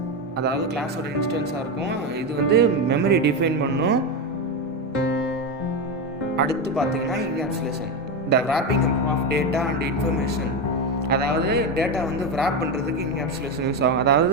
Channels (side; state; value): both; normal; correlation 0.14